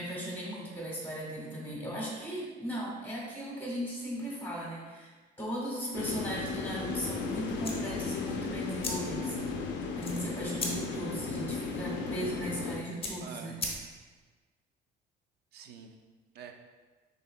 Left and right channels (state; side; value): normal; both; correlation 0.42